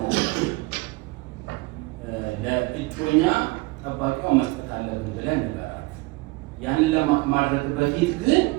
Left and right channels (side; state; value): left; quieter; 23.5 dB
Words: ለእጮኛ ጠባቂዋ መስጠት አለብን ብለን ንገራት። ያንን ለማድረግ በፊት ግን